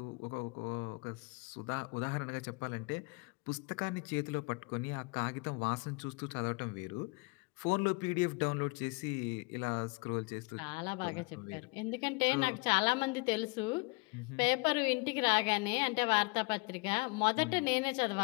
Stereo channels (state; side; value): quieter; right; 28.4 dB